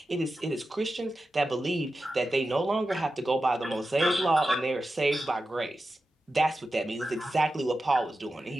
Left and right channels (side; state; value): both; normal; correlation 0.92